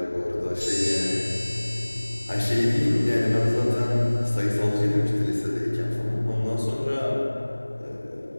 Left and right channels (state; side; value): inverted; both; correlation -1.00